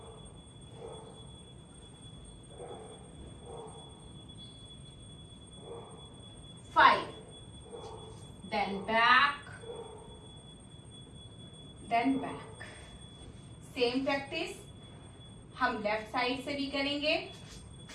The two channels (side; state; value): both; identical; correlation 1.00